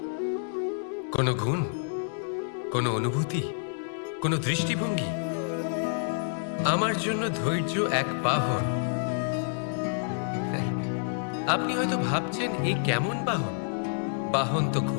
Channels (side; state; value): right; silent; digital silence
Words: কোনো গুণ, কোনো অনুভূতি, কোনো দৃষ্টিভঙ্গি? আমার জন্য ধৈর্য এক বাহন। আপনি হয়তো ভাবছেন এই কেমন বাহন? বাহন তো